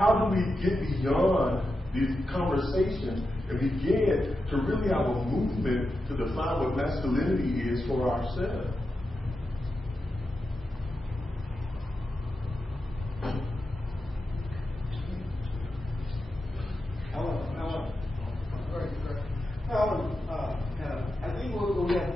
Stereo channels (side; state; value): both; normal; correlation 0.89